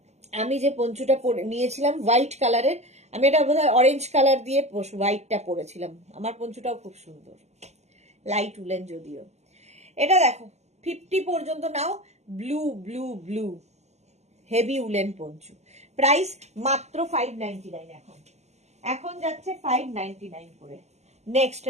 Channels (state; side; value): late; left; 0.33 ms